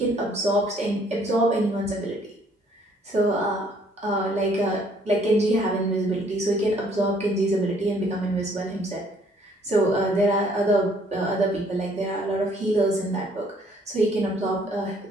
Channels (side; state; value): both; normal; correlation 0.62